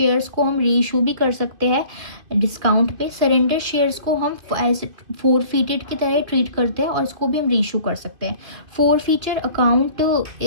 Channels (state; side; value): late; left; 2.5 ms